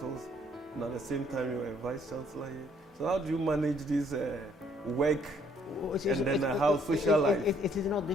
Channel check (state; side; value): normal; both; correlation 0.65